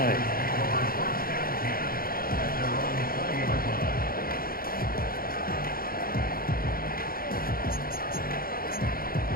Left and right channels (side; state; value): right; late; 0.42 ms